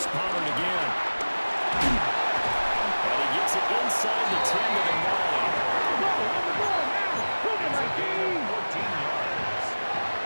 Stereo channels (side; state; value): both; inverted; correlation -1.00